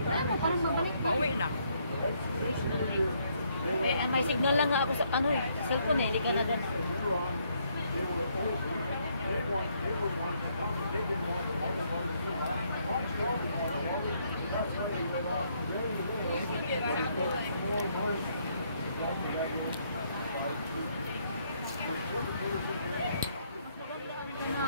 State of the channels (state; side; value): inverted; both; correlation -0.71